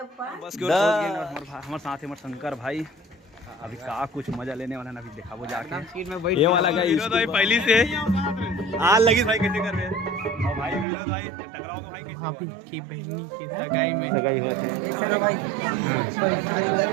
बस हमारे साथ है शंकर भाई। अभी का कुछ मजा लेने वाला ना, अभी देखा वो जाके ये वाला भाई पहली से आग लगी भाई कैसे कर रहे हैं भाई विनोद भाई टकराओ भाई कैसे की बहनी के सगाई में सगाई होते हैं। चलो भाई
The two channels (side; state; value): left; drops out; at 10.9 s